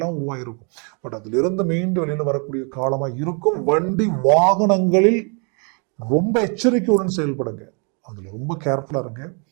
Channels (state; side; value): quieter; left; 37.0 dB